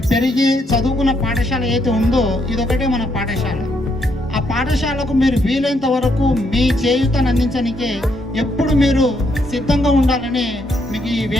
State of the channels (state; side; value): normal; both; correlation 0.74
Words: పెరిగి చదువుకున్న పాఠశాల ఏదైతే ఉందో ఇదొకటే మన పాఠశాల. ఆ పాఠశాలకు మీరు వీలైనంత వరకు మీ చేయూతను అందించడానికే ఎప్పుడు మీరు సిద్ధంగా ఉండాలని మీకు ఈ